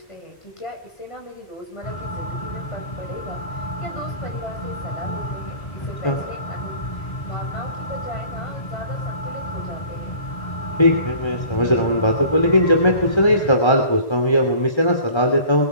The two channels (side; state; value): right; late; 1.3 ms